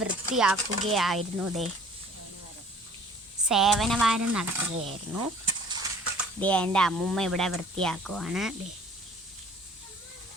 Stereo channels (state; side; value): normal; both; correlation 0.51